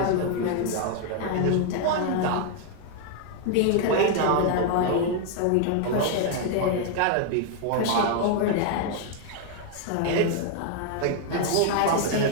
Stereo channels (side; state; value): both; different; correlation 0.00